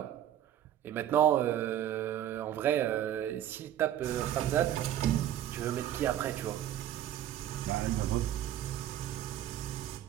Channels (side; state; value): left; quieter; 11.5 dB